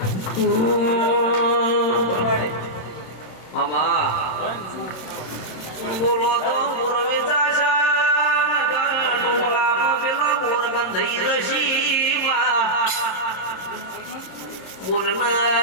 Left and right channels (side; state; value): right; late; 26 ms